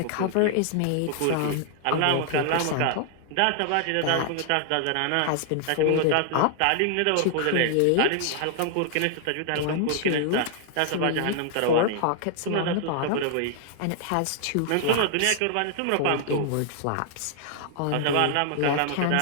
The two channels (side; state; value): both; different; correlation 0.00